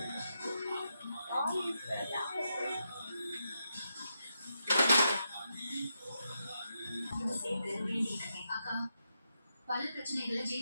அக்கா பல பிரச்சனைகளை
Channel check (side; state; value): both; inverted; correlation -0.84